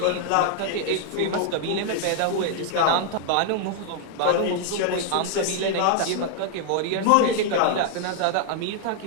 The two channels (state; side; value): different; both; correlation 0.00